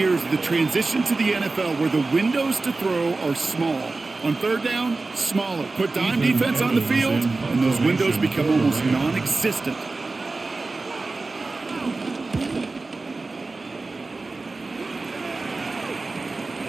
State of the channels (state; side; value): quieter; left; 3.6 dB